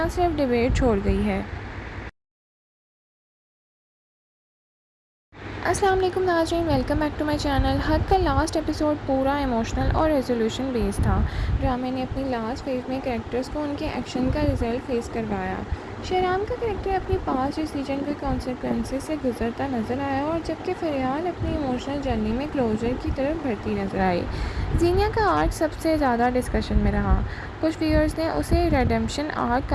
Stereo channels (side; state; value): both; identical; correlation 1.00